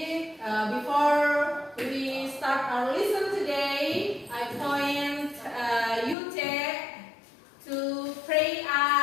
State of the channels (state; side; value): drops out; right; at 6.2 s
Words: before we start our lesson today, I point Yute to pray